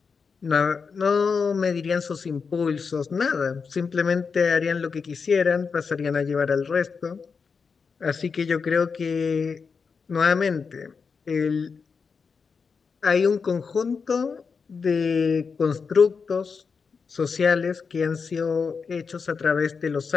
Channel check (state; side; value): quieter; right; 5.4 dB